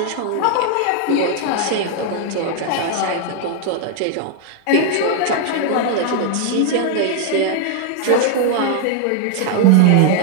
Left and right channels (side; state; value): both; different; correlation 0.00